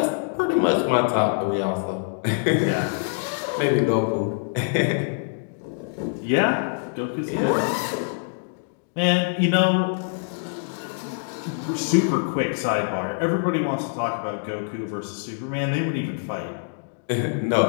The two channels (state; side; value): silent; right; digital silence